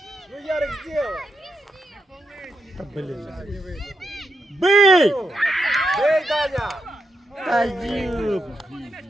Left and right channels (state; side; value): normal; both; correlation 0.84